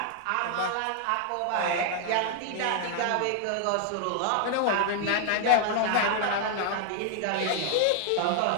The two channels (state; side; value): different; both; correlation 0.00